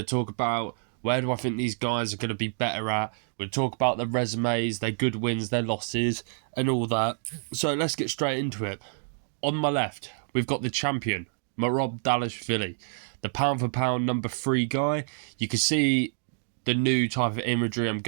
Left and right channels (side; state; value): left; silent; digital silence